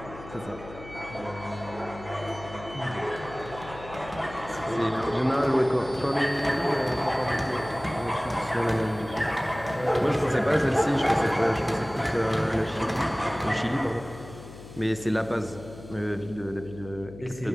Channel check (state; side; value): noise; left; hum, 15 dB below the sound